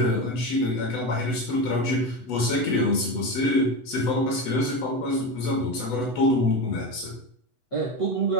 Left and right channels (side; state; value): right; late; 8.0 ms